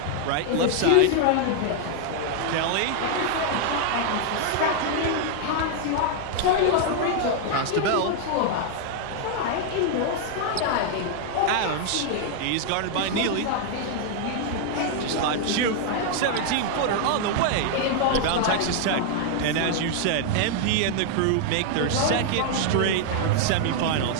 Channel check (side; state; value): both; different; correlation 0.00